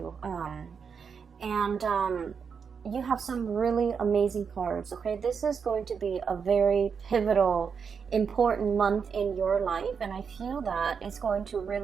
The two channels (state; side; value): quieter; left; 6.3 dB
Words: And you have some really amazing cards, okay? This is going to be a very pivotal, important month in your life. And I feel that it's going to